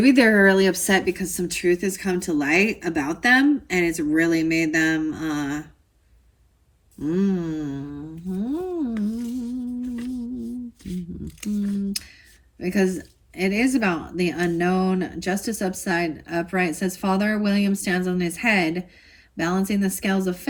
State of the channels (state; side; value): identical; both; correlation 1.00